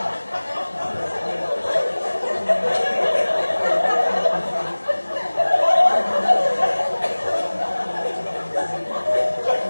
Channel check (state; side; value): inverted; both; correlation -1.00